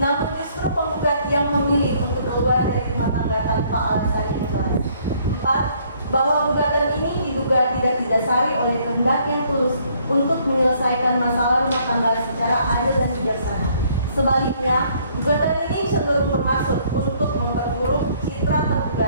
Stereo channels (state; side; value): inverted; both; correlation -0.64